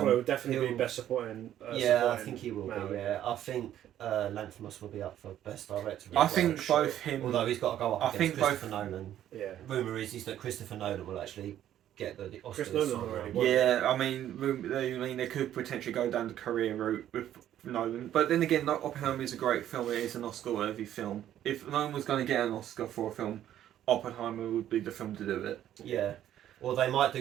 Ruffalo would definitely be Best Supporting. I think he will be. Yeah, I think Lanthimos will be up for Best Director. I think both him. Although he's got to go up against Christopher Nolan. Yeah. Rumour is that Christopher Nolan will actually get the Oscars. Chris Nolan already won. Yeah, I mean, they could potentially go down the career route with Nolan, but then again, Oppenheimer is a great film. It is an Oscar-worthy film. If Nolan was going to get an Oscar for a film, Oppenheimer would be the film to do it. Yeah. Or they might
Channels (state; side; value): quieter; left; 11.5 dB